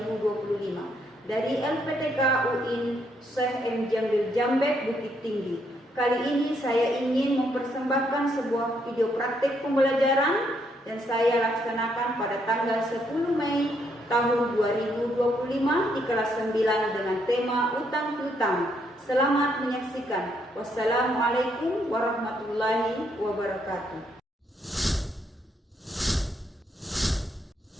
dari LPTK UIN Syekh M. Jambil Jambek, Bukit Tinggi. Kali ini saya ingin mempersembahkan sebuah video praktik pembelajaran dan saya laksanakan pada tanggal 10 Mei tahun 2025 di kelas 9 dengan tema utang piutang. Selamat menyaksikan. Wassalamualaikum warahmatullahi wabarakatuh.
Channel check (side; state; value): both; normal; correlation 0.74